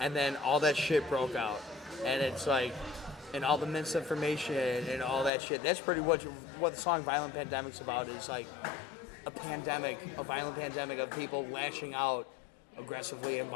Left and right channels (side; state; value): right; drops out; at 5.3 s